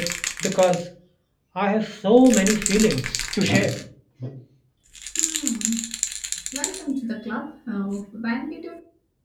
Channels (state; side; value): identical; both; correlation 1.00